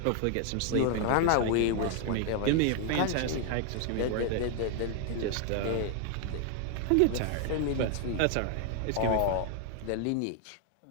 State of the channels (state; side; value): different; both; correlation 0.00